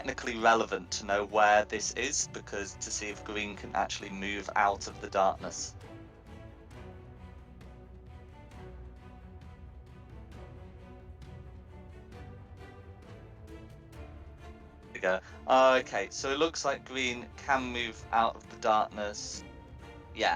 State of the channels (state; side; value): identical; both; correlation 1.00